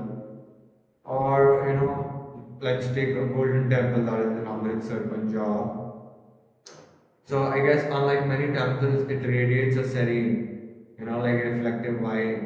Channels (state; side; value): identical; both; correlation 1.00